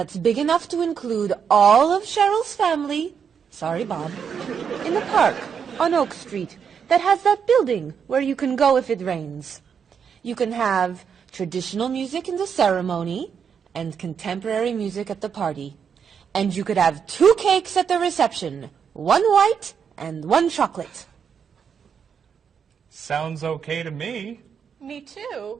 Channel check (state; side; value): quieter; left; 7.0 dB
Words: big enough to include all of Cheryl's family, sorry Bob, in the park on Oak Street that has that building where you can go if it rains. You can have traditional music in the ceremony and contemporary music at the party. And you could have 2 cakes at the reception, 1 white and 1 chocolate. Sounds okay to me. Me